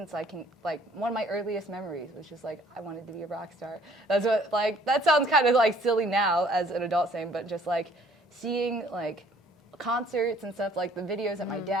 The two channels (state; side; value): normal; both; correlation 0.58